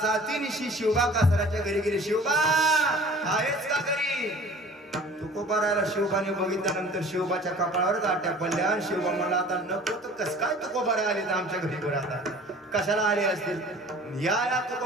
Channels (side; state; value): both; normal; correlation 0.47